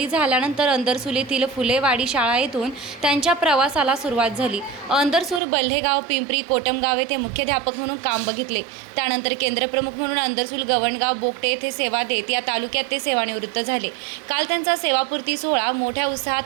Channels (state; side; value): drops out; left; at 5.4 s